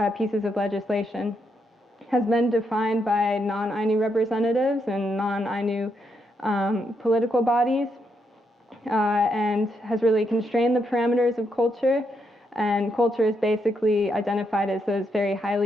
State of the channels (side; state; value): both; normal; correlation 0.79